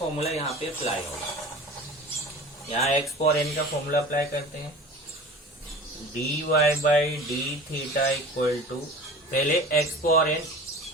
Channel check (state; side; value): normal; both; correlation 0.39